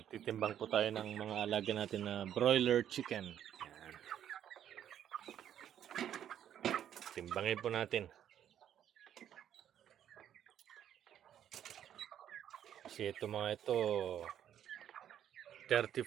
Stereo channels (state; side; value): quieter; left; 10.2 dB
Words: po tayo ng mga alaga natin na broiler chicken. Yan. Timbangin po natin. Kasi ito mga ito